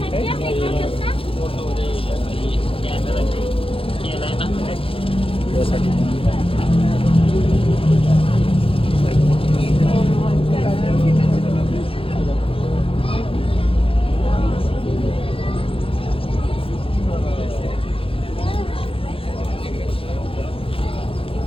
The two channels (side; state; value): right; late; 0.27 ms